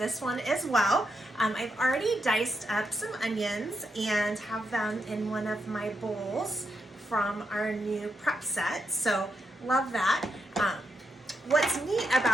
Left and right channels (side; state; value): both; normal; correlation 0.82